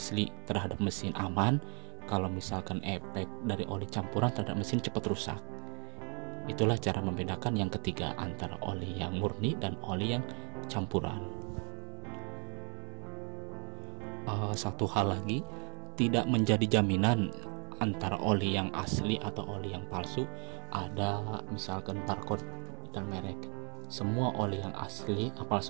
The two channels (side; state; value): left; quieter; 36.6 dB